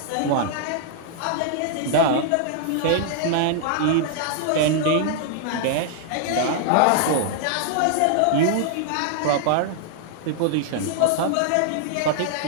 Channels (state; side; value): different; both; correlation -0.01